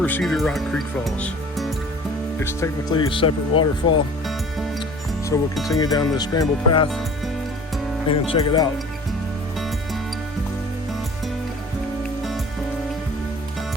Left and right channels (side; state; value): both; normal; correlation 0.45